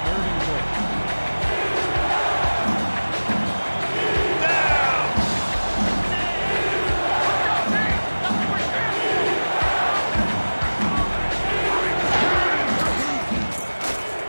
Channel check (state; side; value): inverted; both; correlation -1.00